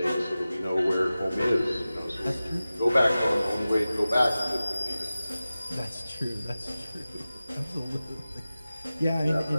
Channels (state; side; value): inverted; both; correlation -0.96